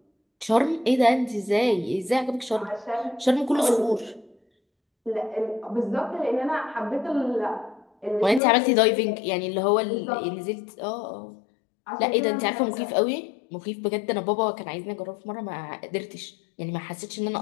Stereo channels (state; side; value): drops out; right; at 8.4 s